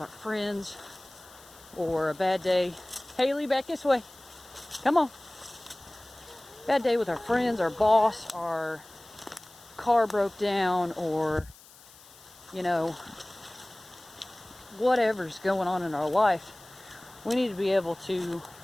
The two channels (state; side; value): noise; left; hiss, 23 dB below the sound